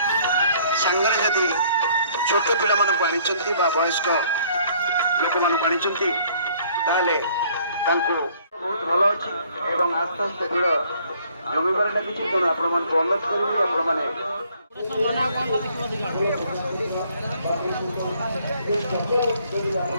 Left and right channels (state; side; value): inverted; both; correlation -0.61